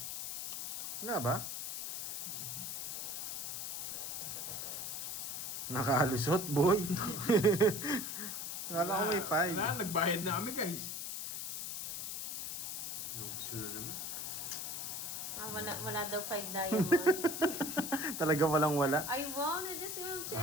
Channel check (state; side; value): noise; left; hiss, 4 dB below the sound